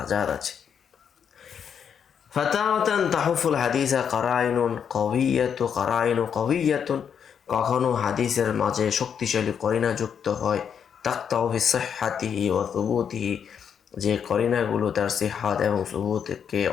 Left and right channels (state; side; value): quieter; right; 7.7 dB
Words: আছে। ফাতাওয়াতান তাহুফুল হাদিসা কারাইনু কওয়িয়াতুন, কখনো হাদিসের মাঝে শক্তিশালী করিনা যুক্ত হয়। তাকতাউ ফি সিহহাতিহি ওয়া সুবুতিহি, যে করিনাগুলো তার সিহহাত এবং সুবুতকে